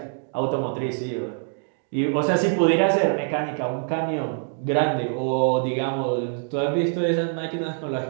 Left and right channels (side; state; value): left; silent; 59 dB below the other